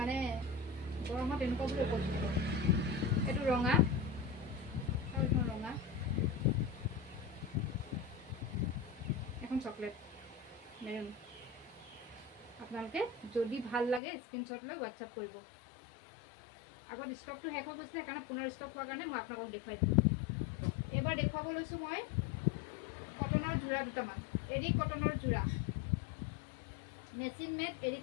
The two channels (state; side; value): drops out; right; at 14.0 s